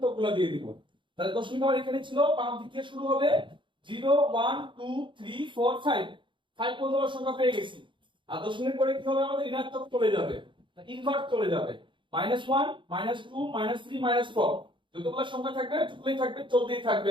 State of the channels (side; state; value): left; late; 0.24 ms